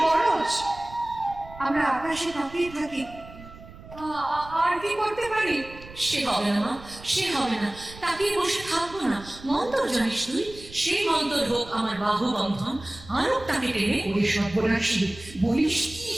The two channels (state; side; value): noise; right; rumble, 18 dB below the sound